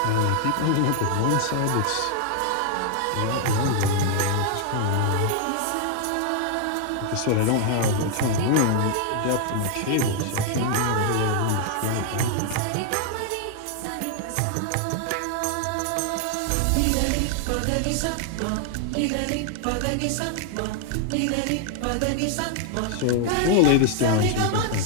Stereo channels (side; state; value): both; different; correlation 0.00